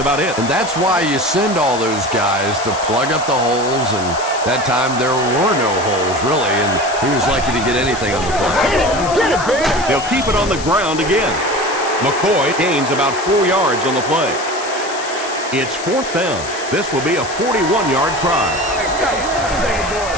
it. And that's why you send all those guys to plug up the holes, and that time there were no holes, really, and he was lucky to get anything on the play. They'll keep it on the ground again. McCoy gains about 4 yards on the play. It's 4th down. This will be a 41-yard try.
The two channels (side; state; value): left; noise; hiss, 11 dB below the sound